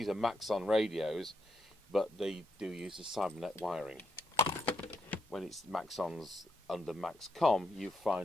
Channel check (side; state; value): both; normal; correlation 0.80